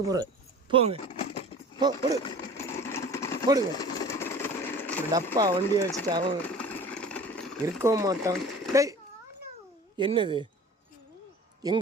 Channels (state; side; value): normal; both; correlation 0.42